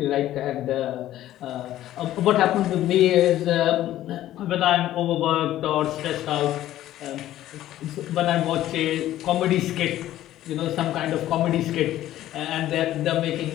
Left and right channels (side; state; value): right; quieter; 13.6 dB